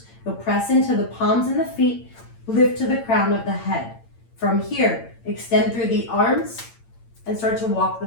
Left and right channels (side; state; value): right; late; 8.8 ms